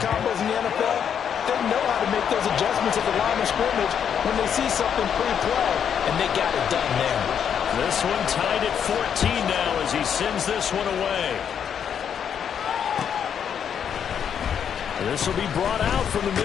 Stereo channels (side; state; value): right; quieter; 8.2 dB